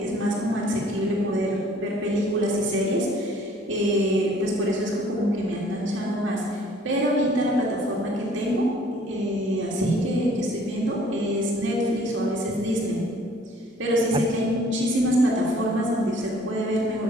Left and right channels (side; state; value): both; normal; correlation 0.56